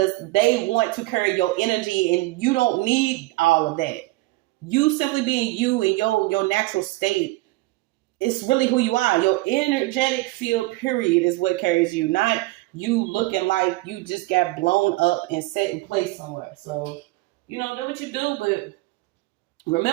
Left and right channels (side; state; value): left; quieter; 21.0 dB